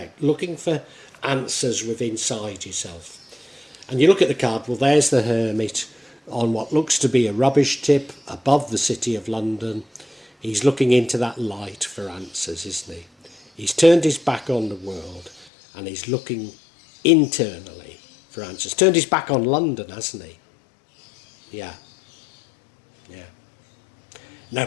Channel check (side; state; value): right; drops out; at 15.5 s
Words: looking for answers within inside yourself. And you look at the card, well, there's the Hermit on what looks to be a rubbish tip above the City of London. He's looking into that light for answers, isn't he? He's turned his back on the world and he's looking internally for answers. Turned his back on London, hasn't he? Yeah. Now,